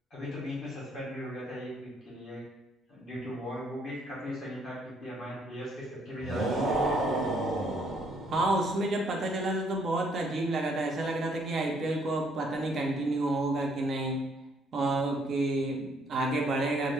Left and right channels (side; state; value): both; normal; correlation 0.67